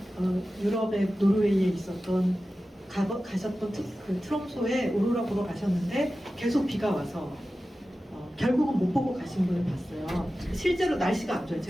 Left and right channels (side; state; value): both; normal; correlation 0.94